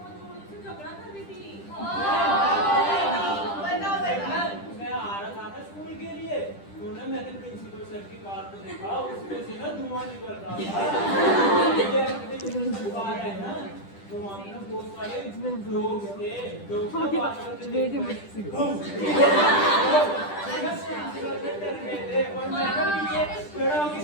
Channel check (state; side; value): late; right; 10 ms